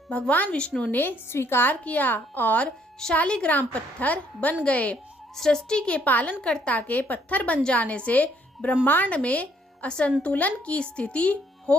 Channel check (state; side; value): normal; both; correlation 0.67